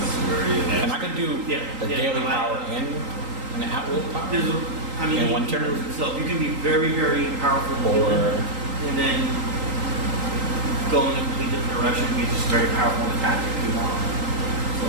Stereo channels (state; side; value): late; left; 3.8 ms